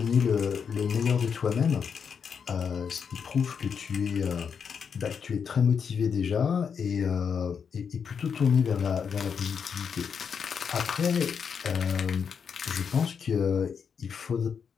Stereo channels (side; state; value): right; quieter; 6.7 dB